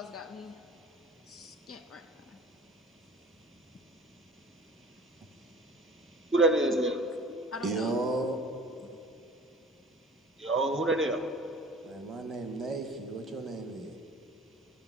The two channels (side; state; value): both; normal; correlation 0.45